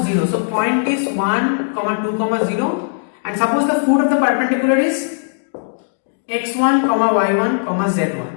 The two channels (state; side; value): silent; right; digital silence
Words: 0. So point is 1, 2, 0, and suppose the foot of the perpendicular is x1, y1,